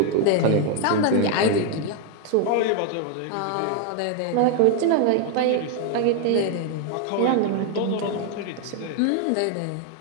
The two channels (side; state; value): both; different; correlation 0.00